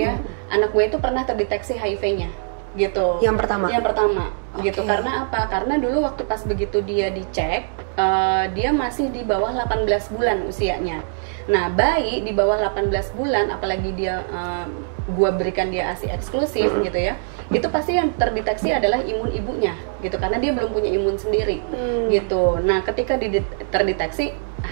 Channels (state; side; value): silent; left; 63 dB below the other